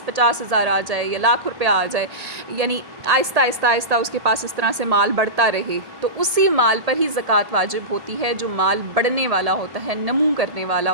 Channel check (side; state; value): left; late; 1.8 ms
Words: 50,000 آ جائے یا لاکھ روپیہ آ جائے، یعنی آہستہ آہستہ اس کے پاس اس طرح سے مال بڑھتا رہے، تو اسی مال پر ہی زکوٰۃ واجب ہوتی ہے جو مال بڑھنے والا ہوتا ہے، نمو کرنے والا